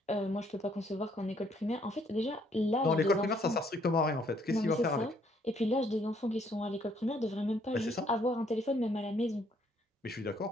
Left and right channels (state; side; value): normal; both; correlation 0.67